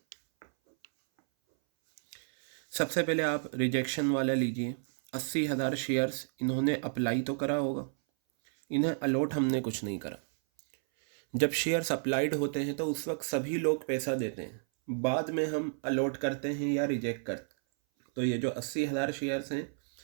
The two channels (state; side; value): silent; left; 57 dB below the other